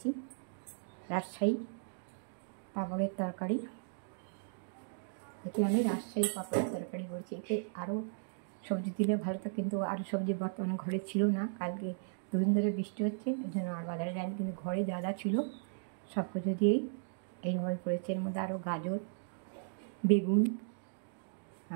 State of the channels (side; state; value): left; silent; digital silence